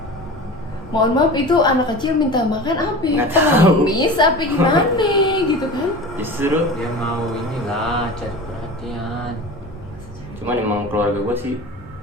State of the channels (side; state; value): both; normal; correlation 0.34